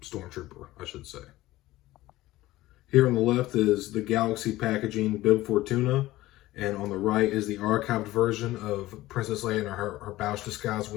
Stormtrooper, I should say. Here on the left is the Galaxy packaging Bib Fortuna, and on the right is the archived version of Princess Leia in her Bouch disguise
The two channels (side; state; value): right; quieter; 17.0 dB